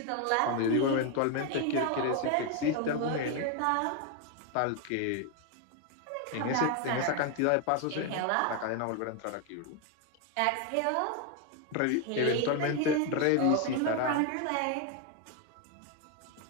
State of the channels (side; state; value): both; different; correlation 0.01